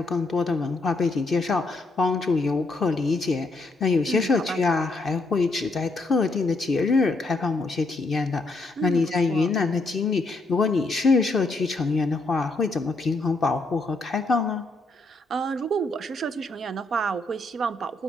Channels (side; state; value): right; quieter; 3.0 dB